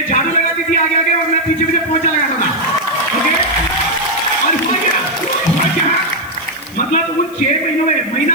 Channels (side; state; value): left; noise; hiss, 23 dB below the sound